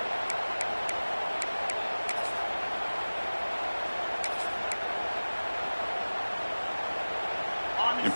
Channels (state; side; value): inverted; both; correlation -1.00